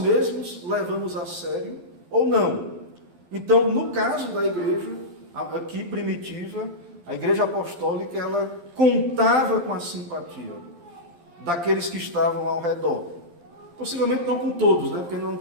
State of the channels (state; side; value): late; left; 12 ms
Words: levamos a sério ou não. Então, no caso da igreja, aqui primitiva, a igreja apostólica, ela contava com a simpatia daqueles que estavam ao redor. Possivelmente não com todos, né? Porque não